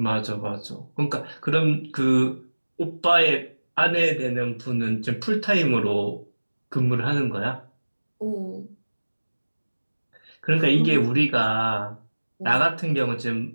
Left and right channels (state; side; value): inverted; both; correlation -1.00